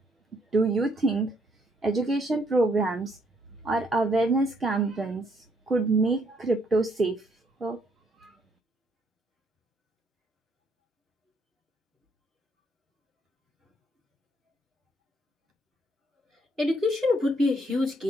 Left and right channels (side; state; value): both; normal; correlation 0.70